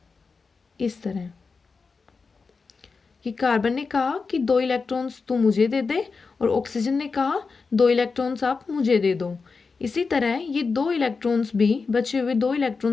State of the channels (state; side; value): quieter; right; 4.6 dB